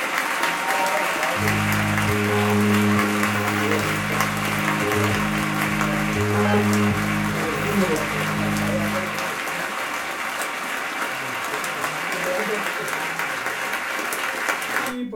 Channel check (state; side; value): identical; both; correlation 1.00